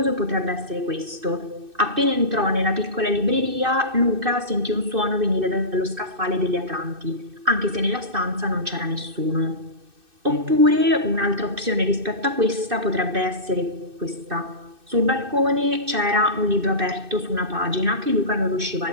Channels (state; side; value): late; left; 2.6 ms